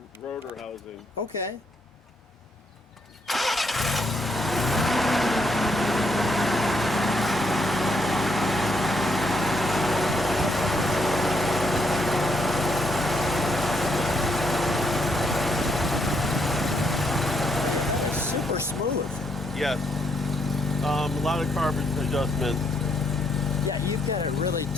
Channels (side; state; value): both; normal; correlation 0.75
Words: housing. Okay. Super smooth. Yes. A lot of carbon adjustments. Yeah, you've got it really